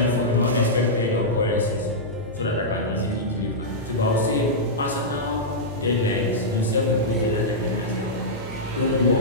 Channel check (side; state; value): both; normal; correlation -0.10